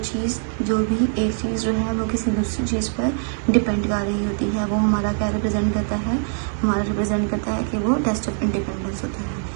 भी एक चीज़ जो है वो किसी दूसरी चीज़ पर डिपेंड कर रही होती है, वो हमारा क्या रिप्रेजेंट करता है, हमारा रिप्रेजेंट करता है कि वो टेस्ट ऑफ इंडिपेंडेंस होता है।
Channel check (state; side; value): silent; left; 60 dB below the other